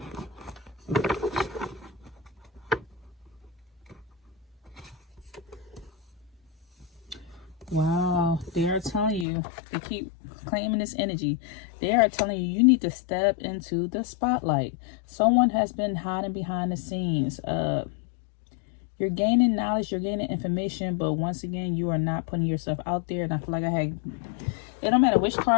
Wow, they are telling you, they keep claiming this energy. They are telling you, you need to step into the spotlight. Someone has been hiding behind the scenes. You're gaining knowledge, you're gaining information, but once again, you are not putting yourself out there. And I feel like it don't matter which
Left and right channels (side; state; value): right; drops out; at 9.2 s